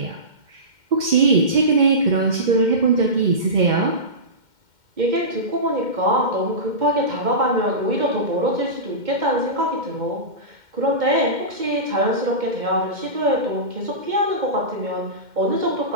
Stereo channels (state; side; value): late; left; 2.1 ms